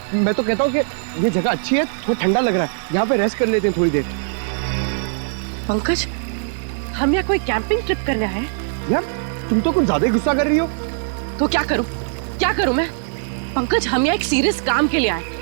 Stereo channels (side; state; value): left; silent; digital silence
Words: मैं तो कहता हूँ कि ये जगह अच्छी है, थोड़ा ठंडा लग रहा है, यहाँ पे रेस्ट कर लेते हैं थोड़ी देर। पंकज, हम यहाँ कोई कैंपिंग ट्रिप करना है? यार तुम तो कुछ ज्यादा ही गुस्सा कर रही हो। तो क्या करूं? क्या करूं मैं? पंकज, हम यहाँ एक सीरियस काम के लिए आए,